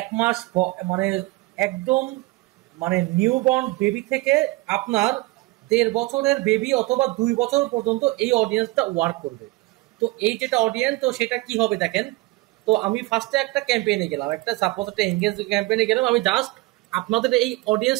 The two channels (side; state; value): left; quieter; 21.0 dB